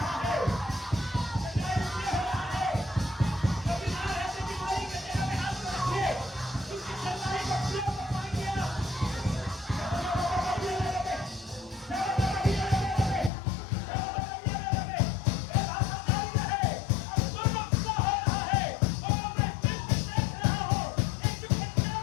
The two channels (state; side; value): drops out; right; at 13.3 s